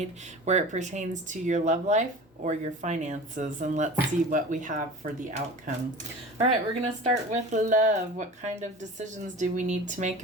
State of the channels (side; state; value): both; normal; correlation 0.37